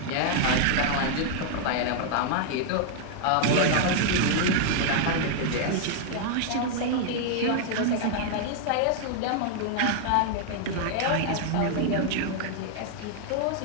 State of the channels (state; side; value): different; both; correlation 0.00